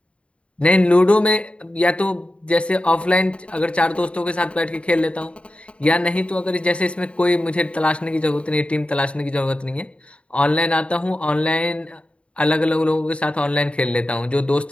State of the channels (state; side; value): late; right; 0.060 ms